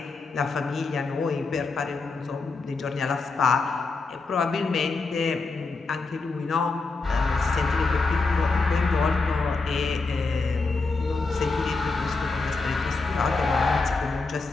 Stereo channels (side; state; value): right; quieter; 3.9 dB